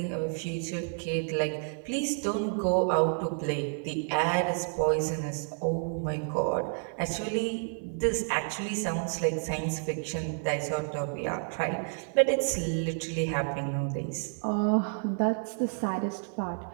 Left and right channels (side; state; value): left; silent; 58 dB below the other